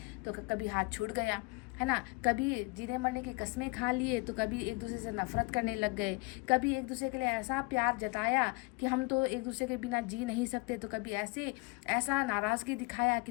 तो कभी हाथ छूट गया, है ना, कभी जीने मरने की कस्में खा लिए तो कभी एक दूसरे से नफरत करने लग गए, कभी एक दूसरे के लिए ऐसा प्यार जताया कि हम तो एक दूसरे के बिना जी नहीं सकते, तो कभी ऐसा नाराज़गी दिखाया कि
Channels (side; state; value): right; quieter; 26.7 dB